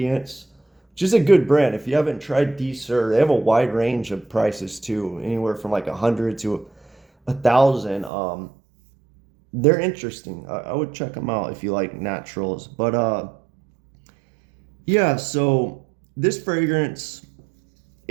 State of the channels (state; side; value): drops out; left; at 8.1 s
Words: which is a good brand. If you haven't tried D Sur, they have a wide range of prices too, anywhere from like 100 to 1,000. They're interesting. I would check them out if you like naturals. But yeah, so this fragrance,